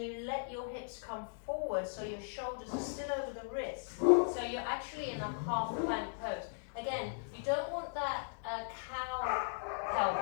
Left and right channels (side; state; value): right; silent; digital silence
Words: you let your hips come forward so your shoulders are still over the wrists. So you're actually in a half plank pose. Again, you don't want that cow